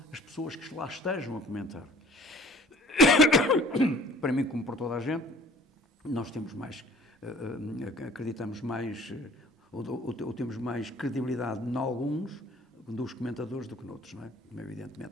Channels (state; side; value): normal; both; correlation 0.52